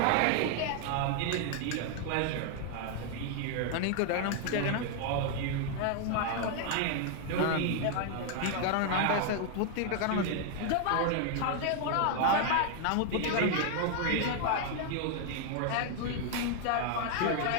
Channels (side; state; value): both; different; correlation 0.00